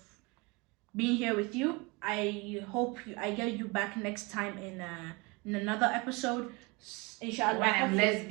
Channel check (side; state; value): left; quieter; 26.5 dB